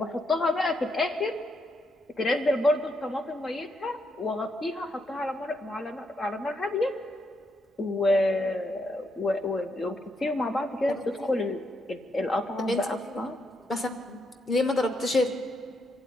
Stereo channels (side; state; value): both; normal; correlation 0.78